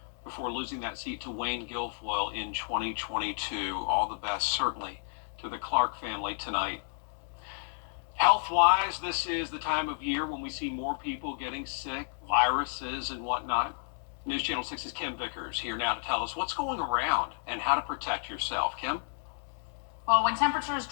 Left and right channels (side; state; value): right; silent; digital silence